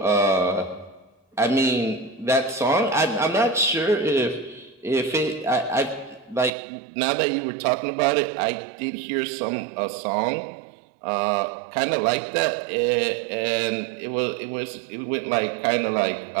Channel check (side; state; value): left; drops out; at 6.5 s